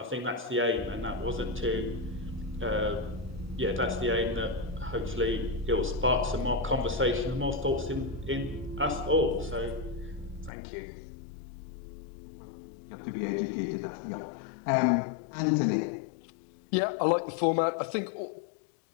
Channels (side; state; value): right; drops out; at 10.5 s